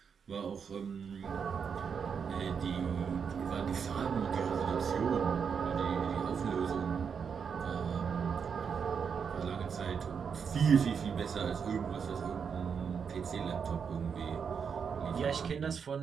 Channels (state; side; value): quieter; left; 6.6 dB